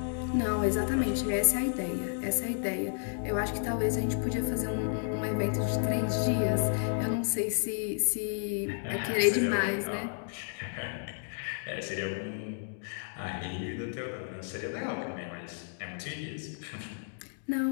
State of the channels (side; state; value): right; silent; digital silence